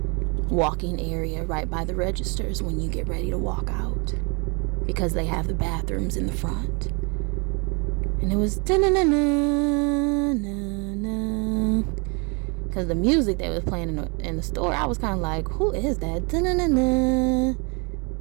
walking area right by the registers when you get ready to walk out, because they have the bathrooms in the front. And it was because the music they was playing in the store, I was kind of like, who is that?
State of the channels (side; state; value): left; quieter; 32.0 dB